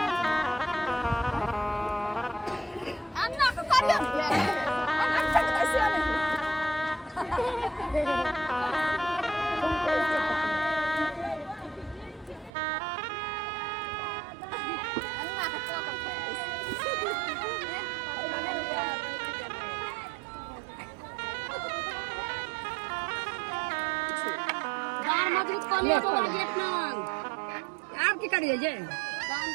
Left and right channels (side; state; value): left; drops out; at 12.5 s